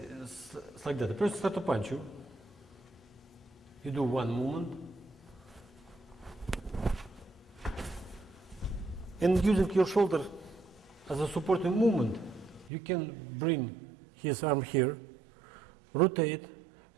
like that. The person starts to punch you. You do one movement. And using your shoulder as a supporting movement, you can bring his arm here, rotate.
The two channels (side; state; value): left; drops out; at 12.7 s